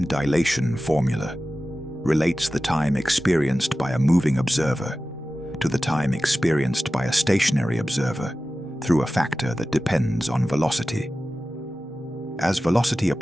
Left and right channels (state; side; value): normal; both; correlation 0.95